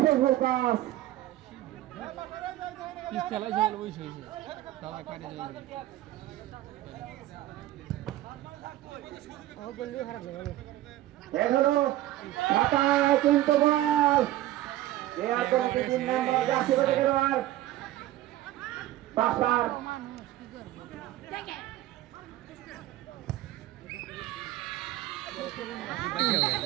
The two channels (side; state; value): left; quieter; 14.7 dB